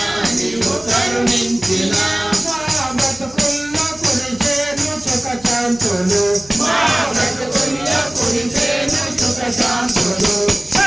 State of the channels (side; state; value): left; noise; hum, 23 dB below the sound